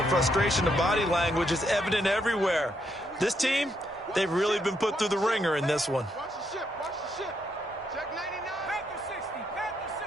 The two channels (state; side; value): normal; both; correlation 0.77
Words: frustration of body language is evident everywhere. This team, they've really been put through the ringer in this one. Watch the ship. Watch the ship. Check 99. Panther